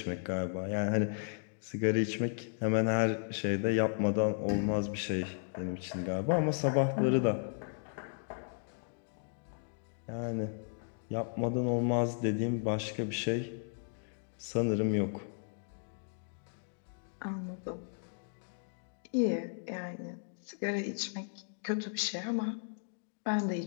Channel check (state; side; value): silent; right; digital silence